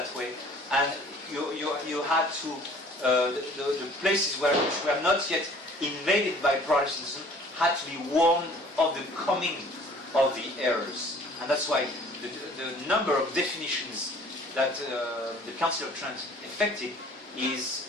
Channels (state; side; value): normal; both; correlation 0.52